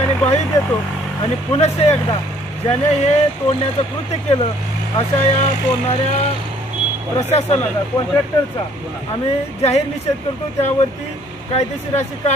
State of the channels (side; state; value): both; normal; correlation 0.60